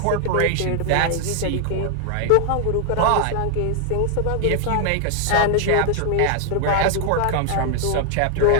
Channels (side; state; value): both; different; correlation 0.00